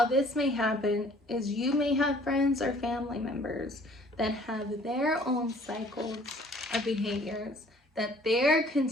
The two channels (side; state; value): both; normal; correlation 0.55